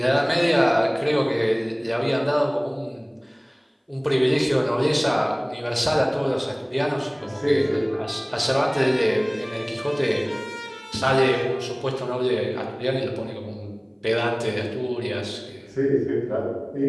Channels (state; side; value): identical; both; correlation 1.00